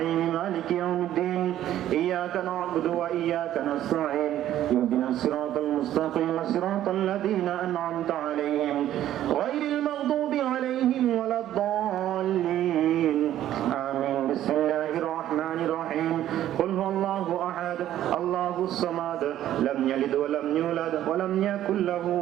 মালিকি ইয়াউমিদ্দিন ইয়্যাকা না'বুদু ওয়া ইয়্যাকা নাস্তাঈন ইহদিনাস সিরাতাল মুস্তাকিম সিরাতাল লাযীনা আন'আমতা আলাইহিম গায়রিল মাগদুবি আলাইহিম ওয়ালাদ-দাল্লিন আমিন বিসমিল্লাহির রাহমানির রাহিম কুল হুয়াল্লাহু আহাদ আল্লাহুস সামাদ লাম ইয়ালিদ ওয়া লাম ইউলাদ ওয়া লাম ইয়াকুল লাহু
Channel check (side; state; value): left; quieter; 12.3 dB